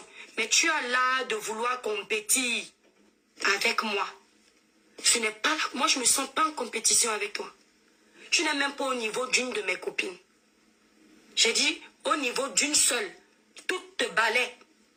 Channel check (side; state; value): both; identical; correlation 1.00